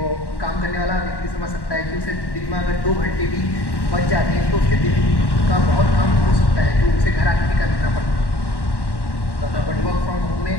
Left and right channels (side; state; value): right; late; 1.1 ms